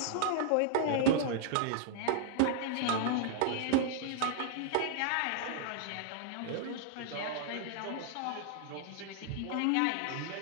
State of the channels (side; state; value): both; different; correlation -0.01